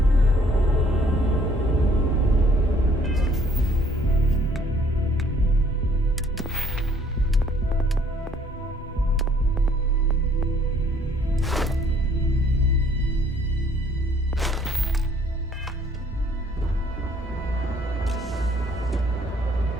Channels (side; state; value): both; normal; correlation 0.61